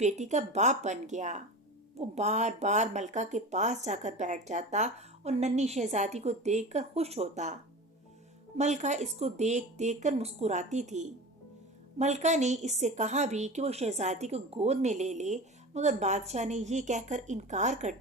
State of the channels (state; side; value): normal; both; correlation 0.32